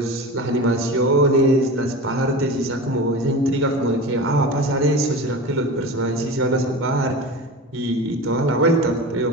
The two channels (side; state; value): both; normal; correlation 0.30